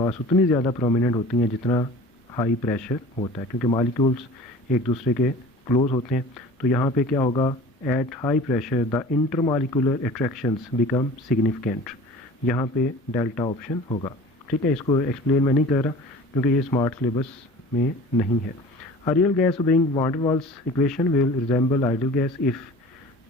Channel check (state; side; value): normal; both; correlation 0.42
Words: उतनी ज़्यादा प्रोमिनेंट होती हैं जितना हाई प्रेशर होता है, क्योंकि मॉलिक्यूल्स एक दूसरे के क्लोज होते हैं। तो यहाँ पे क्या होगा, at high pressure the intermolecular attractions become significant, यहाँ पे डेल्टा ऑप्शन होगा, ठीक है। इसको एक्सप्लेन मैं नहीं कर रहा क्योंकि ये स्मार्ट सिलेबस में नहीं है। A real gas obeying van der Waals equation will resemble ideal gas if,